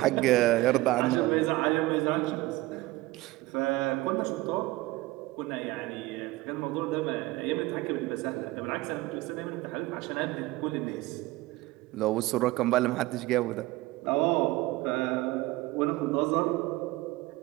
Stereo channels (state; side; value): quieter; left; 19.5 dB